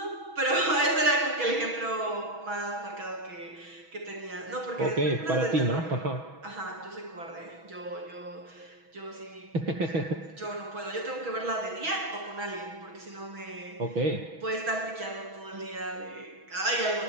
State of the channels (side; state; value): left; late; 6.2 ms